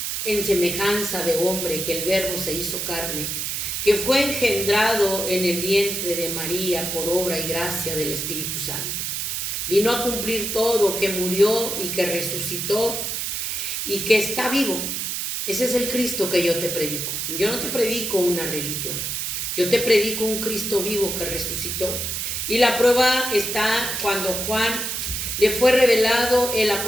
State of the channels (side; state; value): right; noise; hiss, 2 dB below the sound